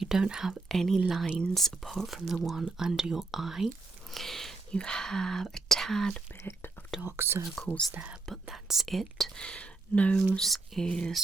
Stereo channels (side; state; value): left; quieter; 3.5 dB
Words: don't have any lines apart from the one under your eye. You have a tad bit of dark circles there, but that's it. Nose is